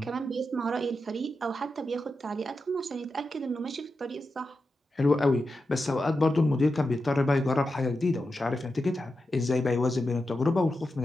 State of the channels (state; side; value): normal; both; correlation 0.89